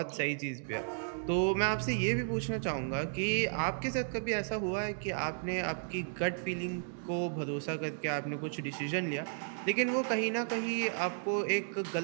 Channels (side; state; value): left; silent; digital silence